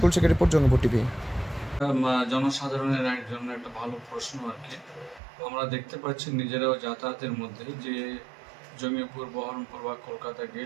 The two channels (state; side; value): drops out; left; at 5.2 s